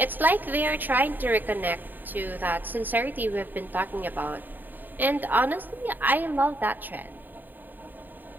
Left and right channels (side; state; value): left; late; 0.090 ms